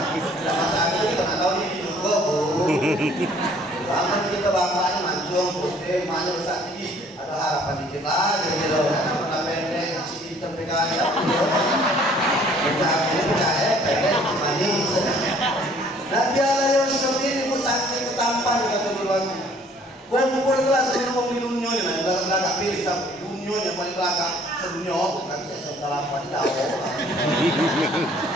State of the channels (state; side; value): normal; both; correlation 0.58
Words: Tidak masalah kita nggak tahu ini juga bu. Aman kita bapaknya mancung, putih, mana besar tinggi. Ada harapan dikit lagi gitu. Karena pendek, si hitam PKI. Nabi Allah Yusuf ini saking ketampan kata duluannya. Kumpul kelas sebelum di dunia ini, belakang pilih tapi dunia yang paling belakang sedunia kan saya salah apa tidak ada.